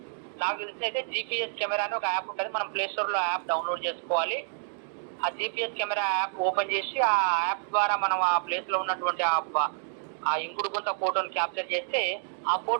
నాకు తెలిసి అయితే GPS కెమెరా అని ఒక యాప్ ఉంటుంది. మనం ప్లేస్టోర్లో యాప్ డౌన్లోడ్ చేసుకోవాలి. ఆ GPS కెమెరా యాప్ ఓపెన్ చేసి ఆ యాప్ ద్వారా మనం ఆ ప్లేస్లో ఉన్నటువంటి ఆ ఇంకుడు గుంత ఫోటోని క్యాప్చర్ చేస్తే ఆ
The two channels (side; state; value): left; silent; digital silence